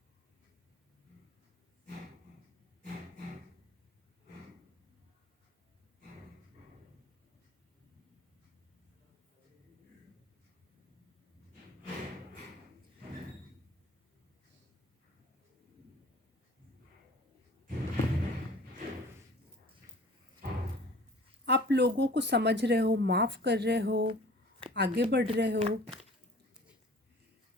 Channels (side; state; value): both; normal; correlation 0.46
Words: आप लोगों को समझ रहे हो, माफ़ कर रहे हो, आगे बढ़ रहे हो,